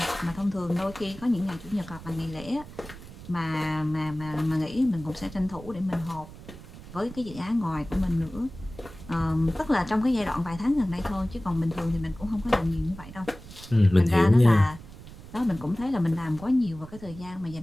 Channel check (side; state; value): right; noise; rumble, 16 dB below the sound